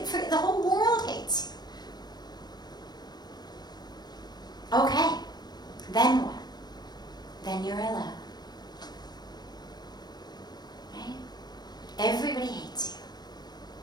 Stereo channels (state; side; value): late; right; 0.20 ms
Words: the whole world hates you. Okay, then what? Then you're alone. Right? Everybody hates you.